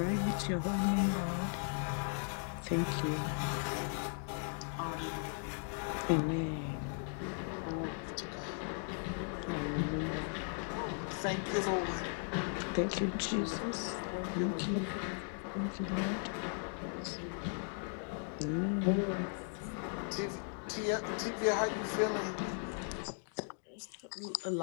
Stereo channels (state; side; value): silent; right; 53 dB below the other